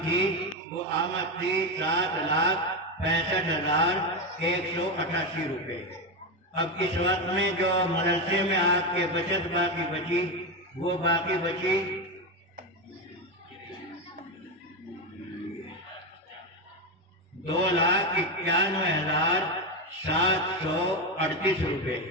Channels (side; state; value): both; normal; correlation 0.13